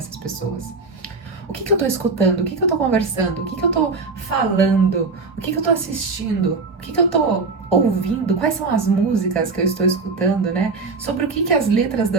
pessoas? O que eu tô escutando? O que eu tô conversando? O que eu tô falando? O que eu tô assistindo? O que eu tô ouvindo? Quais são as músicas que eu estou escutando, né? Sobre o que as letras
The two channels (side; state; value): left; quieter; 4.2 dB